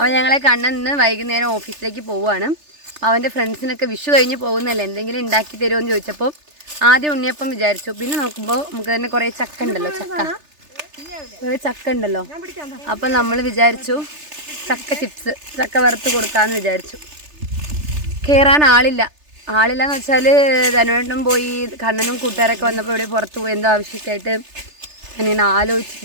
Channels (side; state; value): left; late; 3.3 ms